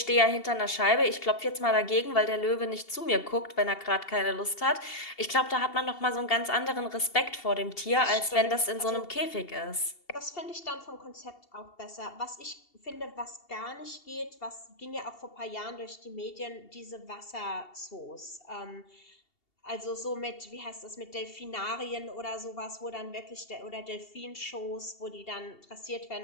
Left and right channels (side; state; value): right; late; 2.7 ms